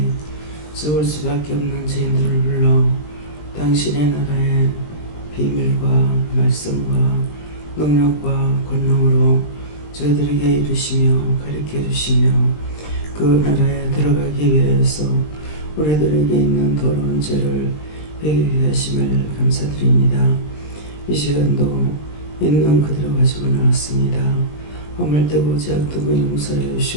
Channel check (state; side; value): late; right; 20 ms